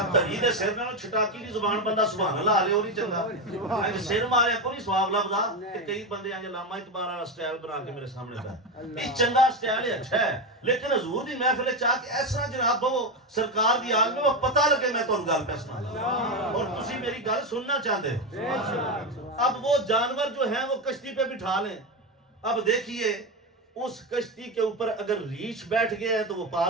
تری دے سر نال چھٹاکی دی زبان بندہ سبحان اللہ لے او نہیں چنگا انج سر مارے کو نہیں سواب لبدا کہ کئی بندے انج علامہ اقبال والا سٹائل بنا کے میرے سامنے پہ یہ چنگا سٹائل ہے اچھا ہے لیکن حضور دی محفل چاہ کے اس طرح جناب وہ سرکار دی آگ میں وہ پتہ لگے میں تانوں گل پہ سنا اور تسی میری گل سننا چاہتے ہو اب وہ جانور جو ہیں وہ کشتی پہ بٹھا لیں اب دیکھیے اس کشتی کے اوپر اگر ریچھ بیٹھ گیا ہے تو وہ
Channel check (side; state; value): both; normal; correlation 0.14